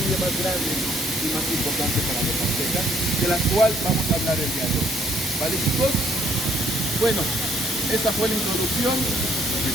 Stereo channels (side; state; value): both; normal; correlation 0.66